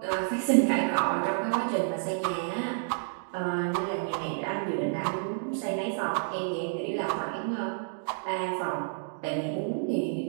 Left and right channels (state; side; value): silent; left; digital silence